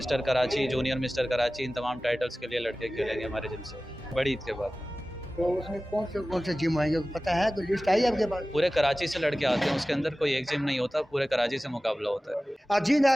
Karachi, junior mister Karachi, इन तमाम टाइटल्स के लिए लड़के खेलेंगे हमारे जिम से बड़ी ईद के बाद। तो उसमें कौन से जिम आएंगे पता है? कोई लिस्ट आई आपके पास? पूरे कराची से लड़के आते हैं, उसके अंदर कोई एक जिम नहीं होता, पूरे कराची से मुकाबला होता है। जी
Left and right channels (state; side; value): normal; both; correlation 0.97